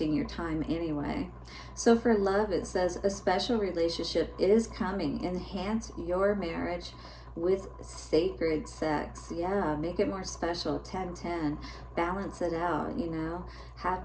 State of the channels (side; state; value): both; identical; correlation 1.00